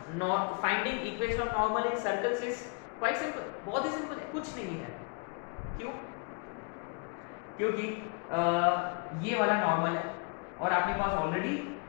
finding equation of normal in circles is quite simple. बहुत ही सिंपल है, कुछ नहीं है. क्यों? क्योंकि ये वाला नॉर्मल है और आपके पास ऑलरेडी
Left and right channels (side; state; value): right; quieter; 35.0 dB